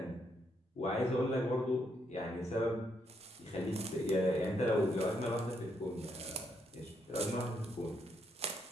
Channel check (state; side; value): normal; both; correlation 0.76